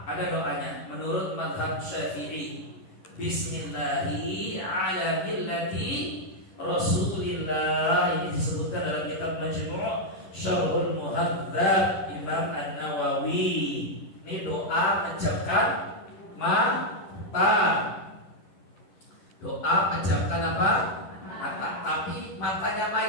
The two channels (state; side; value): late; right; 11 ms